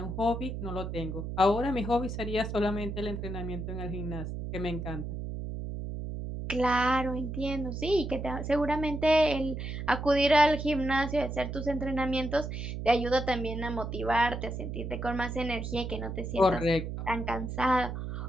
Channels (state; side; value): noise; right; hum, 5 dB below the sound